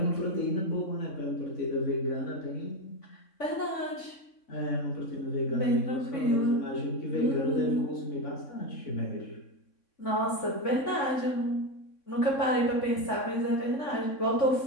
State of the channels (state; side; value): late; right; 3.6 ms